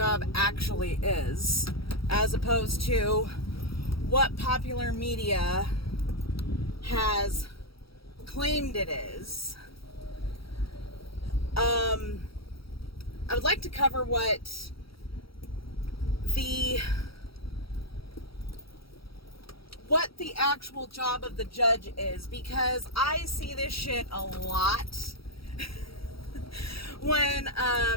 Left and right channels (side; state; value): right; late; 0.75 ms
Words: actually is, as opposed to what popular media has claimed it is, I would like to cover what the actual job of the judge is, because I see this shit a lot when